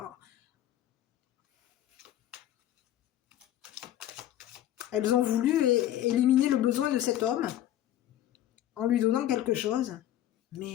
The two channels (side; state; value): right; quieter; 12.5 dB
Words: elles ont voulu éliminer le besoin de cet homme en lui donnant quelque chose.